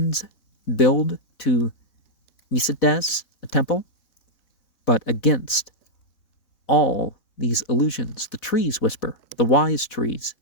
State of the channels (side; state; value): right; late; 4.1 ms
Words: build to Micedes a temple? But against all these illusions, the trees whisper, the wise trees,